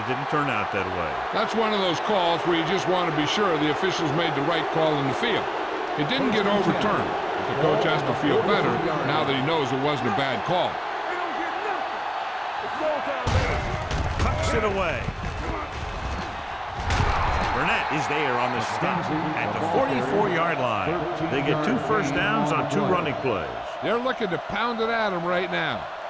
didn't turn out that way. That's one of those calls where you just want to be sure the officials made the right call in the field. It didn't get overturned, but the coach has to feel better now that he knows it wasn't a bad call. Tucks it away. Burnett is there on the stop at the 44-yard line. They get 2 first downs on 2 running plays. They're looking to pound it at him right now.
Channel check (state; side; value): identical; both; correlation 1.00